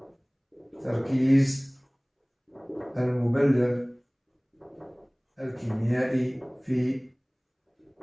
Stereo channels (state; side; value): identical; both; correlation 1.00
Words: تركيز المبلغ الكيميائي في